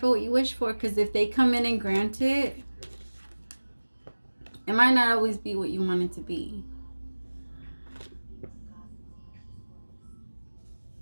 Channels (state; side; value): inverted; both; correlation -1.00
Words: what you wish for, because if they come in and grant it, it might not always be what you want it to be.